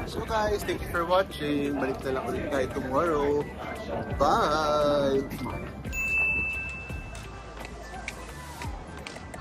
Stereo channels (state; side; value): identical; both; correlation 1.00